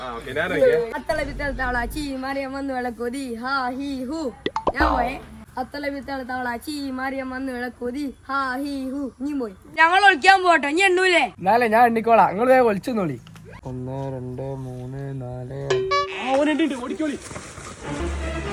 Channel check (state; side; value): identical; both; correlation 1.00